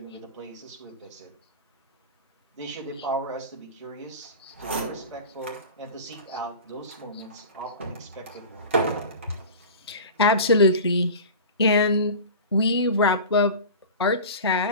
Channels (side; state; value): both; inverted; correlation -0.33